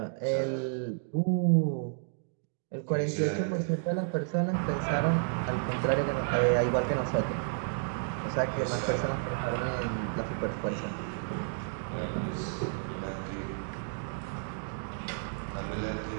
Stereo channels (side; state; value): left; silent; digital silence